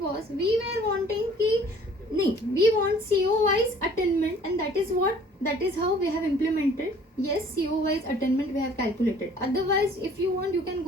was we were wanting की नाही, we want CO wise attainment and that is how we have implemented. Yes, CO wise attainment we have calculated. Otherwise if you want you can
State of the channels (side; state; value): both; normal; correlation 0.54